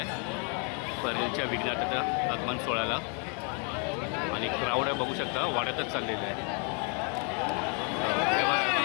परेलच्या विघ्नार्थाच्या आगमन सोहळ्याला. आणि क्राऊड आहे बघू शकता, वाड्यातच चाललेलं आहे.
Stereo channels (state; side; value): quieter; right; 37.7 dB